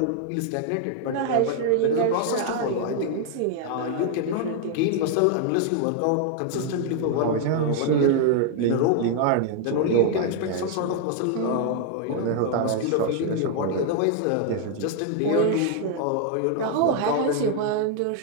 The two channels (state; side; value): different; both; correlation 0.00